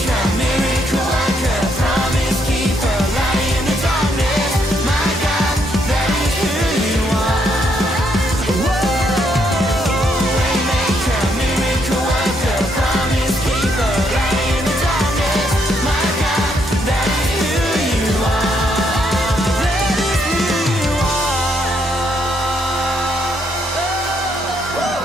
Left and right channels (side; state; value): both; normal; correlation 0.74